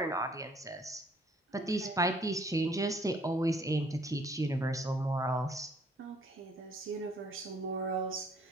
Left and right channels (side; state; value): both; normal; correlation 0.61